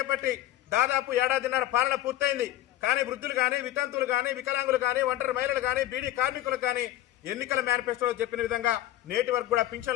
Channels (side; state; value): right; quieter; 13.9 dB